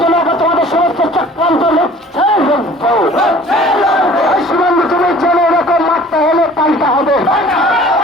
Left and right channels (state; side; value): normal; both; correlation 0.49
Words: জন্য তোমাদের সমস্ত চক্রান্ত লক্ষ্যে এই সীমান্ত তুমি জেনে এরকম মারতে হলে পাল্টা হবে।